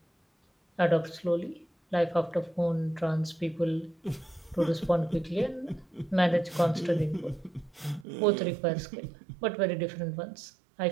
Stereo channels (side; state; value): left; drops out; at 8.1 s